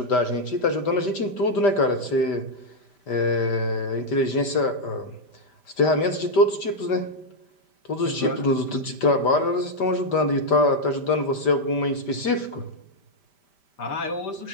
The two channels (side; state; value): right; late; 5.1 ms